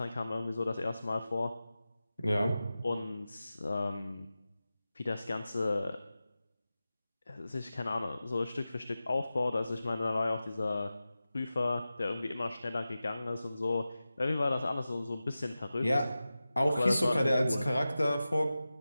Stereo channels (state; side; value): inverted; both; correlation -0.94